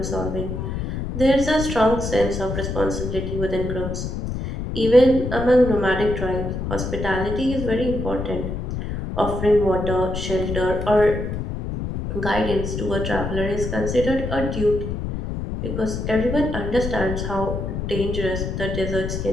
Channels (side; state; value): left; noise; rumble, 4 dB below the sound